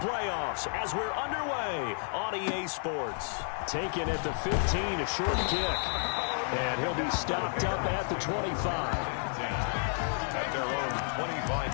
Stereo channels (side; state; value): right; silent; 55 dB below the other